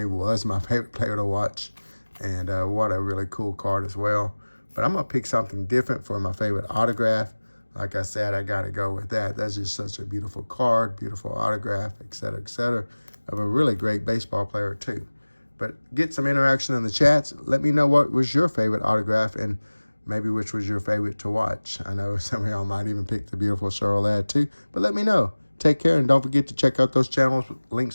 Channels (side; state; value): both; inverted; correlation -1.00